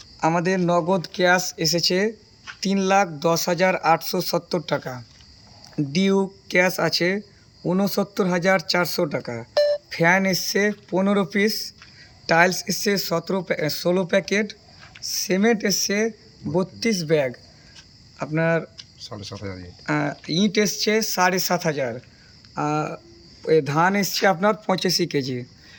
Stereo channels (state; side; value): identical; both; correlation 1.00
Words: আমাদের নগদ ক্যাশ এসেছে 3,10,870 টাকা। ডিউ ক্যাশ আছে 69,400 টাকা। ফ্যান এসছে 15 পিস, টাইলস এসছে 16 প্যাকেট, সিমেন্ট এসছে 32 ব্যাগ, আপনার ইট এসছে 7,500, ধান এসছে আপনার 85 কেজি।